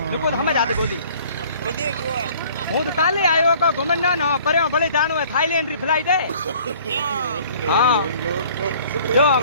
नुको तो हमें जाते बोली कितने हुआ? हूँ तो काले आयो को घुमन ना पर भले जानो है थाईलैंड री फ्लाइट है। हाँ जो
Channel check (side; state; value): both; inverted; correlation -0.53